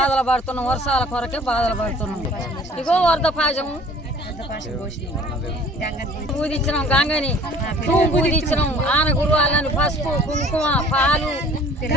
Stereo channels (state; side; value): normal; both; correlation 0.51